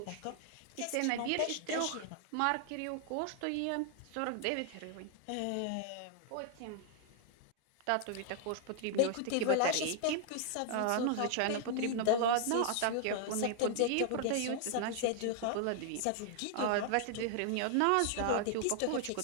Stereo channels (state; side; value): different; both; correlation 0.00